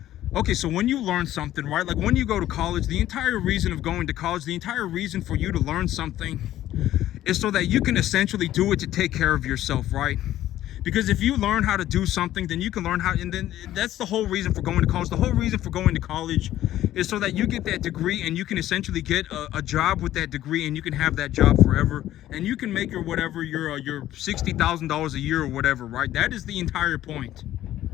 okay, so when you learn something, right? Like when you go to college, the entire reason of going to college, the entire reason for you to learn something is so that you can essentially do it to take care of yourself, right? Because if you learn how to do something, then you can learn how, and then that's the whole reason for going to college. The whole reason for going to college is so that you get that degree and you can essentially get a job with that degree, and you can have that job forever, and you can make your $60,000 a year or whatever, right? That is the entire point,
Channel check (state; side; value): quieter; right; 13.4 dB